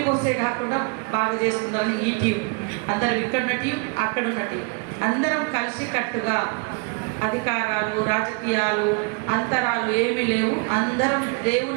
పోసే కాకుండా బాగా చేసుకుందామని ఈ టీం అందరం ఇక్కడున్న టీం అక్కడున్న టీం అందరం కలిసి కట్టుగా అధికారాలు రాజకీయాలు అంతరాలు ఏమీ లేవు. అందరం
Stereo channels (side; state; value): left; quieter; 34.1 dB